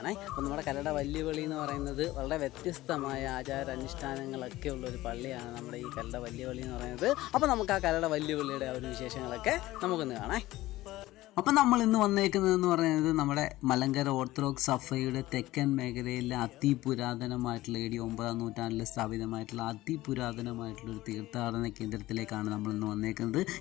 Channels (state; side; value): quieter; right; 17.0 dB